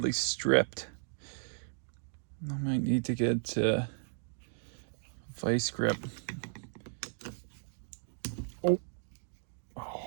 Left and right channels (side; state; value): left; silent; digital silence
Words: stripped. I might need to get vice grip. Oh,